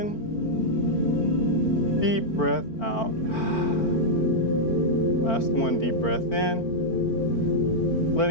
Deep breath out. Last one, deep breath in.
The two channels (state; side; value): late; right; 4.4 ms